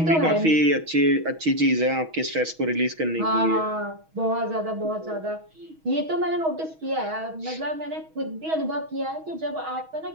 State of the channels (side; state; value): left; late; 6.3 ms